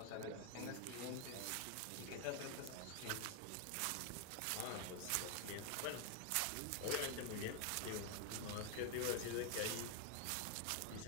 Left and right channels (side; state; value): both; different; correlation 0.01